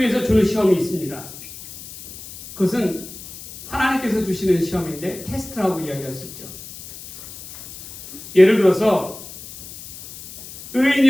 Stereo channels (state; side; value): noise; left; hiss, 15 dB below the sound